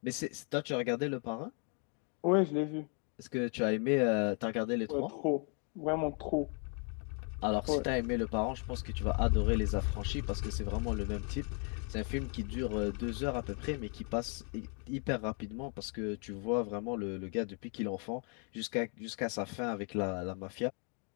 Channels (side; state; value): right; quieter; 39.8 dB